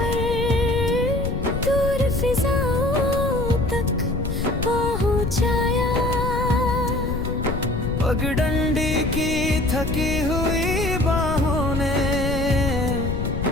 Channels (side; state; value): left; noise; rumble, 3 dB below the sound